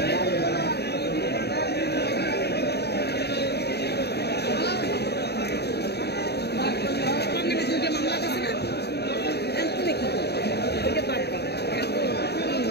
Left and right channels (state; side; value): late; right; 0.48 ms